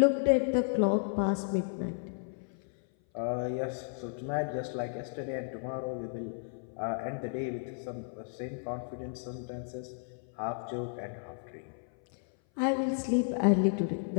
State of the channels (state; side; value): silent; right; 56 dB below the other